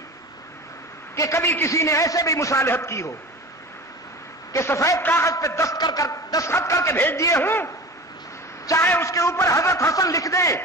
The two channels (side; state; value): both; normal; correlation 0.34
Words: کہ کبھی کسی نے ایسے بھی مصالحت کی ہو کہ سفید کاغذ پہ دستخط کر کے بھیج دیے ہوں، چاہے اس کے اوپر حضرت حسن لکھ دیں